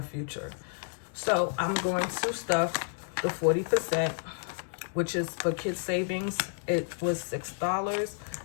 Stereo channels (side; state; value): right; silent; 57 dB below the other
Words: future. So I'm going to stuff the 40%, which is for kids savings. It was $6.